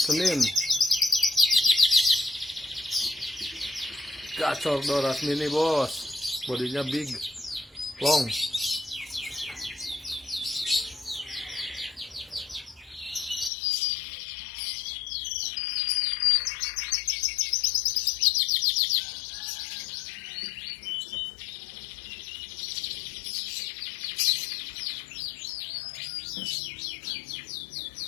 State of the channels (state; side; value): drops out; right; at 13.5 s